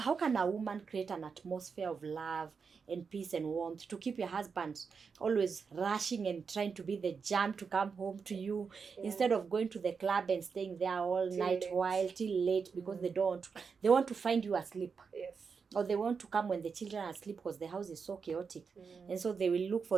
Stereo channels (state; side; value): quieter; left; 5.6 dB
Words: can a woman create an atmosphere of love and peace and warmth to keep your husband always rushing and trying to be the jam to come home to you, instead of going to the club and staying there all Till night late. while till late because they want to find you asleep, Yes. or they want to come when the children are asleep because the house is so chaotic. And so they will look